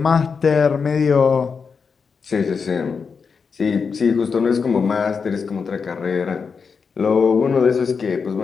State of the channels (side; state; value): right; quieter; 5.5 dB